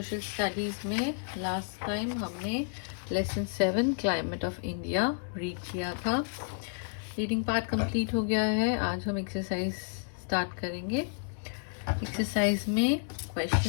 स्टडीज़ में लास्ट टाइम हमने lesson 7 climate of India read किया था। रीडिंग पार्ट कंप्लीट हो गया है। आज हम एक्सरसाइज स्टार्ट करेंगे। एक्सरसाइज में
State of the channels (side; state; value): right; silent; 57 dB below the other